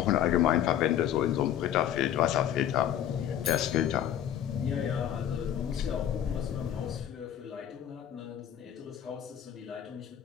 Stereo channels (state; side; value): quieter; right; 10.3 dB